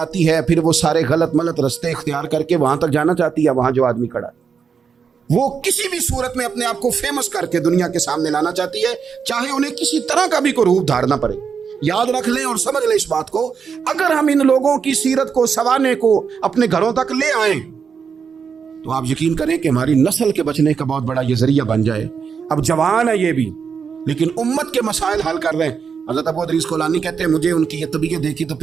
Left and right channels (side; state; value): left; quieter; 6.3 dB